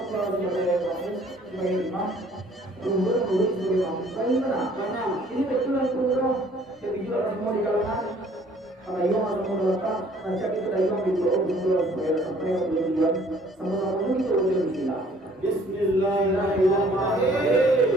kalau sebagai imam. Kemudian sebagai imam. Karena ini betulan program. Jadi juga semua di kalangan karena imam atau menolakkan najak itu dari imam di bawah supaya sampai ke tujuan sama-sama itu boleh bismillah.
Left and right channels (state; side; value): normal; both; correlation 0.57